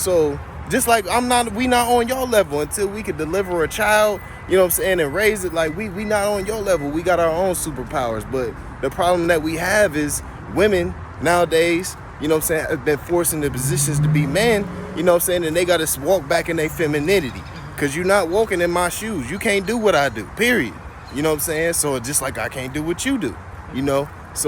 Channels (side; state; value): both; identical; correlation 1.00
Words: just like we not on your level until we could deliver a child, you know what I'm saying, and raise it. Like, we not on your level. We got our own superpowers. But the problem that we have is women nowadays, you know what I'm saying, have been forced into positions to be men, you know what I'm saying, and they got to walk back in their femininity. Because you're not walking in my shoes. You can't do what I do, period. You know what I'm saying? So just like I can't do what you do, you know?